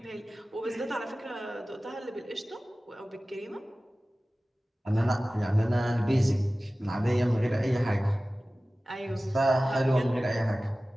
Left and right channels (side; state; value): both; normal; correlation 0.97